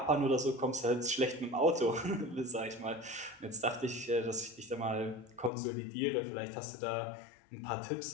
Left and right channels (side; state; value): right; drops out; at 5.5 s